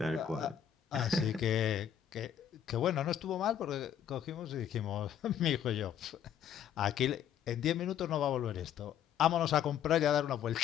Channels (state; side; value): quieter; right; 9.4 dB